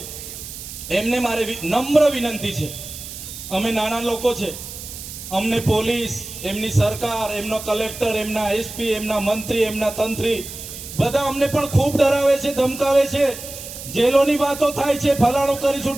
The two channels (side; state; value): right; noise; hiss, 11 dB below the sound